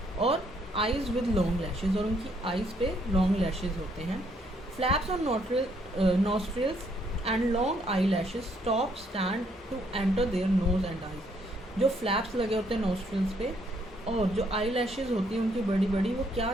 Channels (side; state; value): both; normal; correlation 0.69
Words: और आइज विद लॉन्ग लैशेस, और उनकी आइज़ पे लॉन्ग लैशेस होते हैं. Flaps on nostrils and long eye lashes stop stand to enter their nose and eyes. जो फ्लैप्स लगे होते हैं नॉस्ट्रल्स पे और जो आई लैशेज होती हैं उनकी बड़ी बड़ी, वो क्या